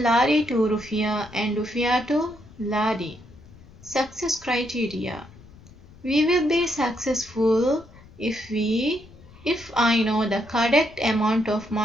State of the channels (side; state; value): left; noise; rumble, 22 dB below the sound